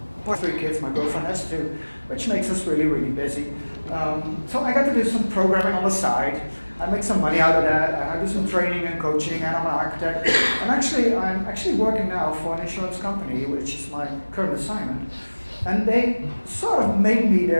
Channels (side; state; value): both; inverted; correlation -1.00